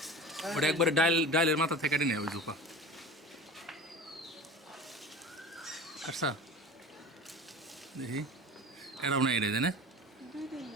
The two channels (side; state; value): both; normal; correlation 0.35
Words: ওটা একবারে ডাইলের মাথা থেকে কেটে নেয় ওই জোপা পারছা দেখি এটাও না এটা জানে